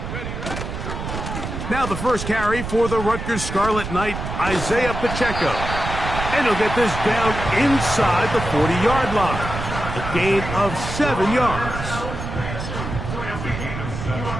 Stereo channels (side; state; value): right; noise; rumble, 6 dB below the sound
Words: Now the first carry for the Rutgers Scarlet Knight, Isaiah Pacheco. And he'll get this down inside the 40-yard line. A gain of 7 yards.